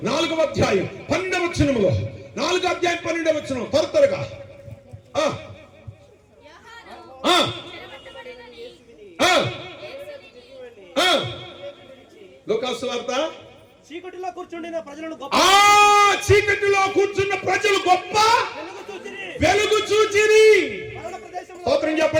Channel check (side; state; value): both; identical; correlation 1.00